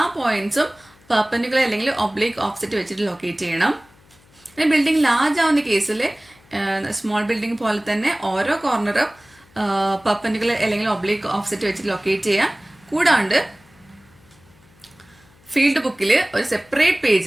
പോയിന്റ്സും പെർപെൻഡിക്കുലർ അല്ലെങ്കിൽ ഒബ്ലിക് ഓഫ്സെറ്റ് വെച്ചിട്ട് ലൊക്കേറ്റ് ചെയ്യണം. പിന്നെ ബിൽഡിംഗ് ലാർജ് ആവുന്ന കേസിൽ സ്മോൾ ബിൽഡിംഗ് പോലെ തന്നെ ഓരോ കോർണറും പെർപെൻഡിക്കുലർ അല്ലെങ്കിൽ ഒബ്ലിക് ഓഫ്സെറ്റ് വെച്ചിട്ട് ലൊക്കേറ്റ് ചെയ്യാം. കൂടാണ്ട് ഫീൽഡ് ബുക്കിൽ ഒരു സെപ്പറേറ്റ്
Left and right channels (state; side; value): noise; left; hum, 29 dB below the sound